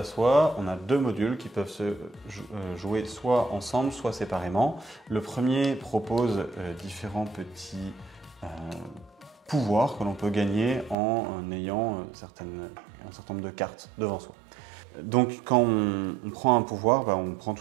Soie, on a deux modules qui peuvent se jouer soit ensemble, soit séparément. Le premier propose différents petits pouvoirs que l'on peut gagner en ayant un certain nombre de cartes devant soi. Donc quand on prend un pouvoir, on prend tout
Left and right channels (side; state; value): left; drops out; at 11.0 s